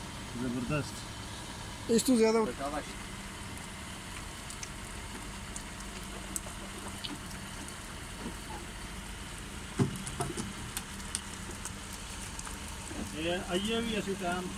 ਜ਼ਬਰਦਸਤ इस तो ज्यादा शाबाश ਇਹ ਆਈਏ ਵੀ ਅਸੀਂ ਟਾਈਮ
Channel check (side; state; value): both; identical; correlation 1.00